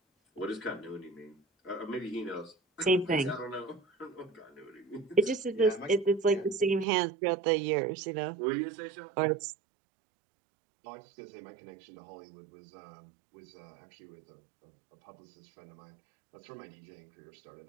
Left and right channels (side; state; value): left; drops out; at 6.9 s